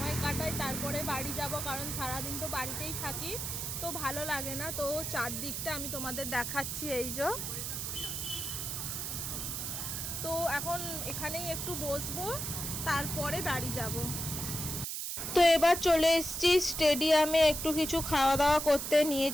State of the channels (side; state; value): right; noise; hiss, 4 dB below the sound